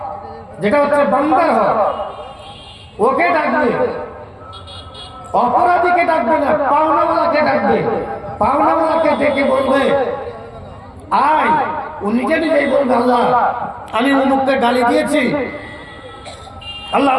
যেটা হচ্ছে বান্দার হক, ওকে ডাকবে, অপরাধীকে ডাকবে না, পাওনাওয়ালাকে ডাকবে। পাওনাওয়ালাকে ডেকে বলবে আয়, ও নিজে নিজেই বলবে আল্লাহ আমি অমুককে গালি দিয়েছি, আল্লাহ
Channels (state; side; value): identical; both; correlation 1.00